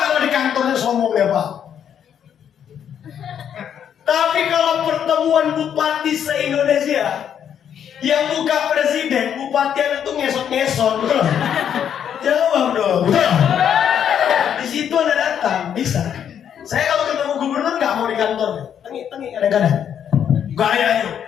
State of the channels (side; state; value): right; quieter; 8.8 dB